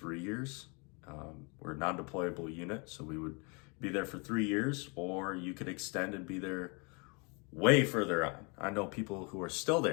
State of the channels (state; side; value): quieter; right; 31.9 dB